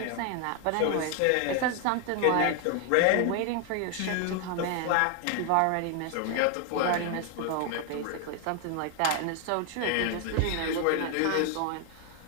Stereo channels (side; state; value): both; different; correlation 0.00